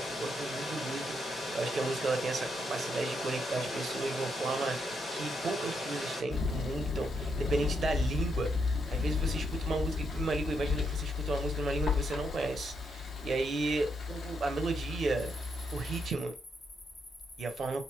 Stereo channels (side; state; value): both; normal; correlation 0.79